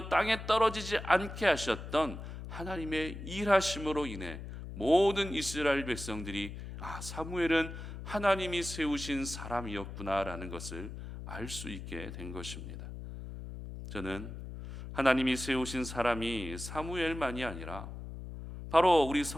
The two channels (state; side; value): noise; left; hum, 10 dB below the sound